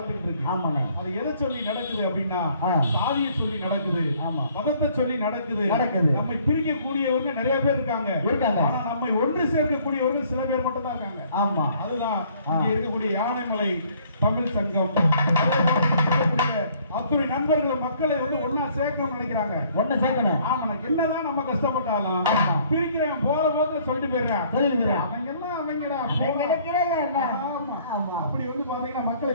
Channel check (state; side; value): inverted; both; correlation -0.60